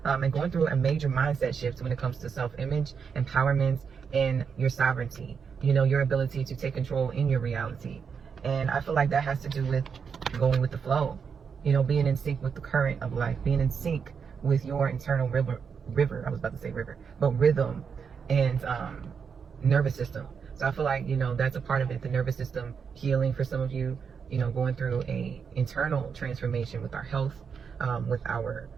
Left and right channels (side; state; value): left; quieter; 6.3 dB